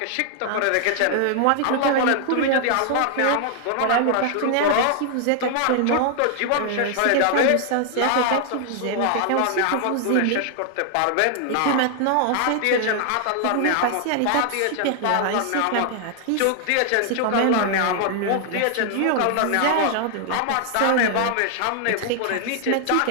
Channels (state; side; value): different; both; correlation 0.00